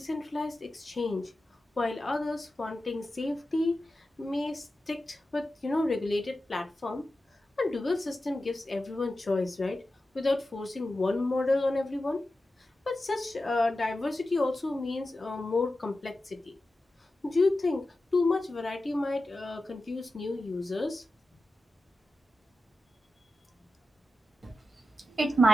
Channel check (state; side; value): normal; both; correlation 0.92